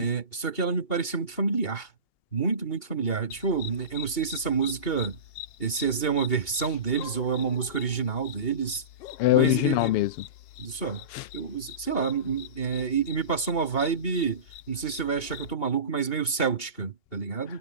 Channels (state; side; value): late; right; 2.8 ms